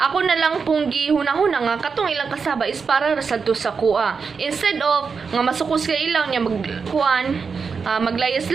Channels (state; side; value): quieter; left; 5.4 dB